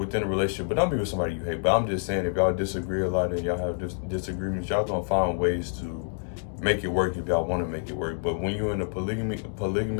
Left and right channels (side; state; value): right; silent; digital silence